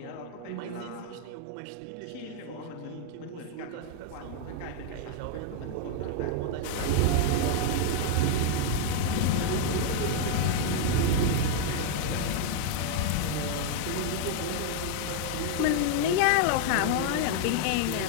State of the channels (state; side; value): different; both; correlation 0.00